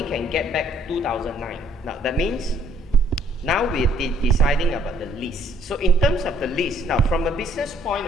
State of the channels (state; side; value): normal; both; correlation 0.63